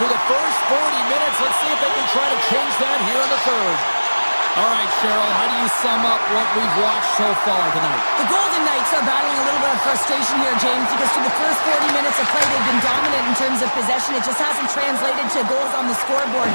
the first 40 minutes. Let's see if they can try to change that here in the third. All right, Cheryl, how do you sum up what we've watched so far tonight? The Golden Knights are battling a little bit of frustration here, James, because through the first 40 minutes of play, they've been dominant in terms of possession. It just hasn't translated to goals on the scoreboard.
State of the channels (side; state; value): both; inverted; correlation -1.00